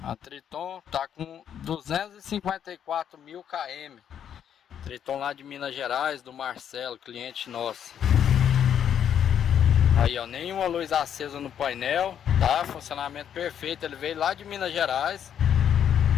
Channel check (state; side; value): quieter; right; 9.1 dB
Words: a Triton tá com 254.000 km. Triton lá de Minas Gerais, do Marcelo, cliente nosso. Aí, ó, nenhuma luz acesa no painel, tá? Funcionamento perfeito. Ele veio lá de Minas Gerais